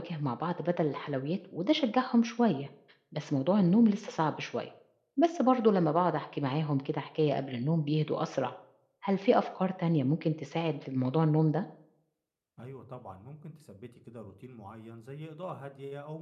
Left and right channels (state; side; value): identical; both; correlation 1.00